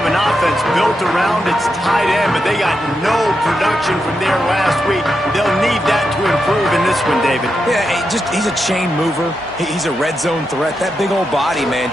an offense built around its tight end, but they got no production from there last week. They'll need that to improve in this one, David. Yeah, he's a chain mover. He's a red zone threat. That big old body, man,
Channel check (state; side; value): normal; both; correlation 0.86